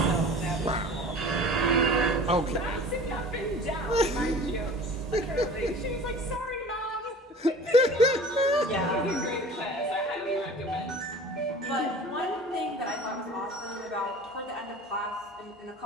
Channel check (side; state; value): both; normal; correlation 0.42